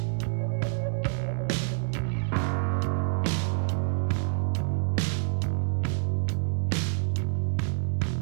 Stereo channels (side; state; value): left; silent; digital silence